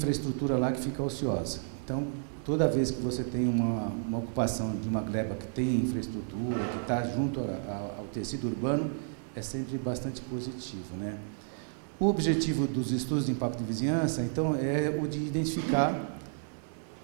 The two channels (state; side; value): silent; left; digital silence